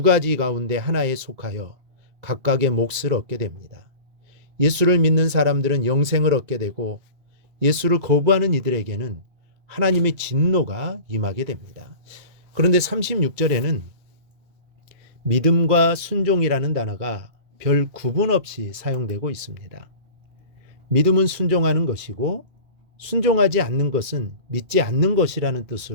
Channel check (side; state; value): left; late; 2.3 ms